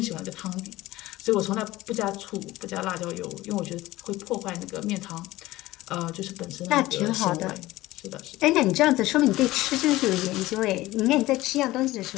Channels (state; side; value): quieter; right; 17.6 dB